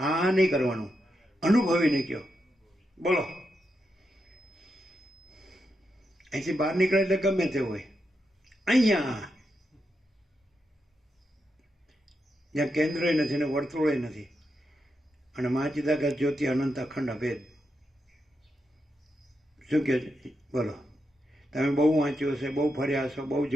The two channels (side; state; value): both; normal; correlation 0.85